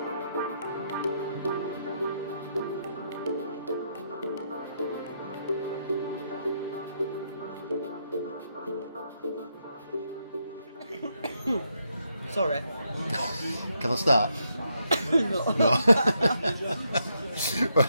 Sorry. Can I start? No.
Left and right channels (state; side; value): inverted; both; correlation -0.79